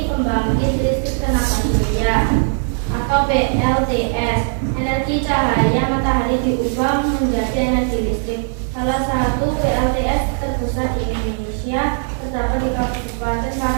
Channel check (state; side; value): silent; left; 67 dB below the other